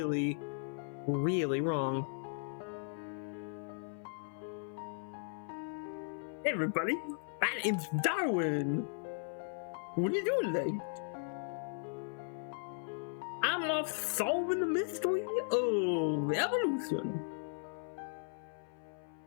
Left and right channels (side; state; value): right; silent; 53 dB below the other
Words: really wrong. Hey everybody, my name's Darwin. What are you doing today? I'm off solving the mystery of evolution.